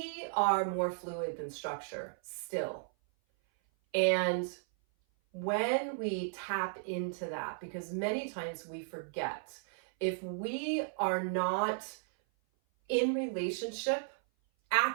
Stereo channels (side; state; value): left; silent; 55 dB below the other